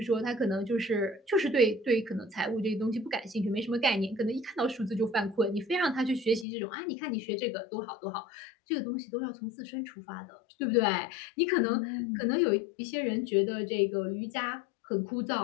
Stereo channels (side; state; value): right; drops out; at 6.5 s